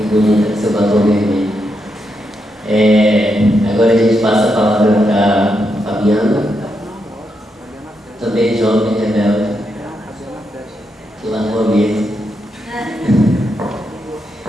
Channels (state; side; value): normal; both; correlation 0.82